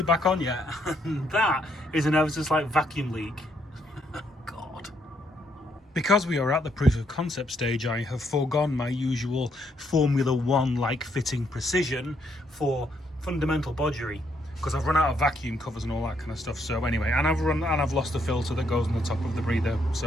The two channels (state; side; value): normal; both; correlation 0.74